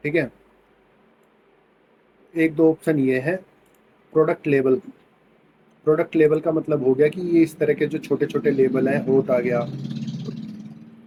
ठीक है। एक दो ऑप्शन ये है। प्रोडक्ट लेबल, प्रोडक्ट लेबल का मतलब हो गया कि ये इस तरह के जो छोटे छोटे लेबल हैं, होट आ गया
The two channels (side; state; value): both; identical; correlation 1.00